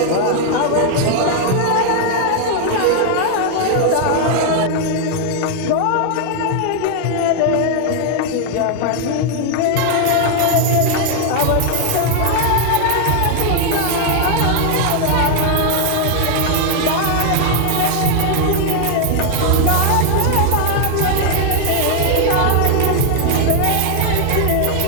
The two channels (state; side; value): different; both; correlation 0.00